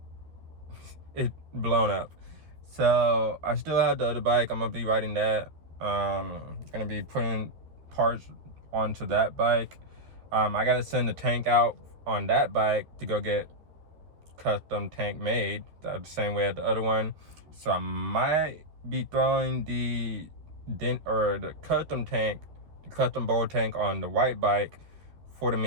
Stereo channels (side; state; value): left; late; 13 ms